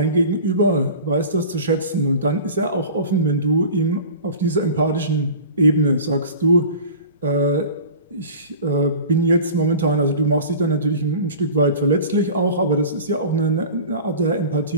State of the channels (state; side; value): inverted; both; correlation -0.39